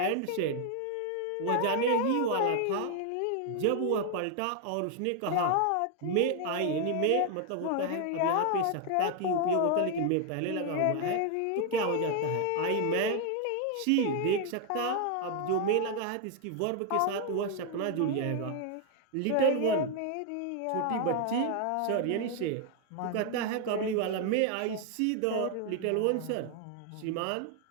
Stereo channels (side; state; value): both; different; correlation 0.00